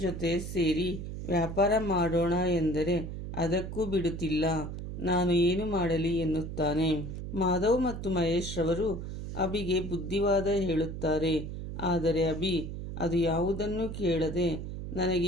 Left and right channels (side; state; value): right; noise; hum, 7 dB below the sound